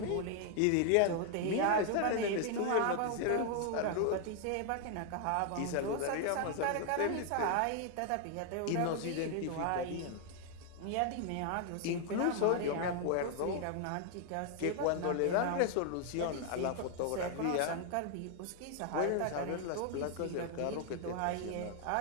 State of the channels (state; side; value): different; both; correlation 0.00